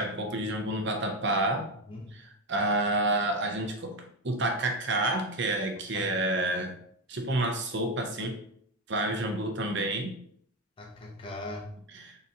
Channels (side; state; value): both; normal; correlation 0.12